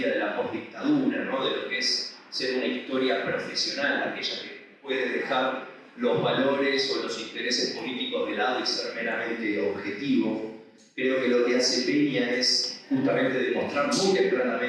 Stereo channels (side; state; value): both; identical; correlation 1.00